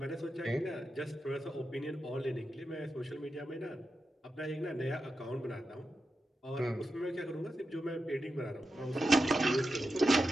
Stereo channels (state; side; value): normal; both; correlation 0.90